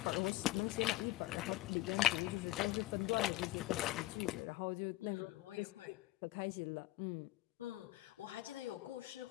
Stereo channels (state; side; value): quieter; right; 17.2 dB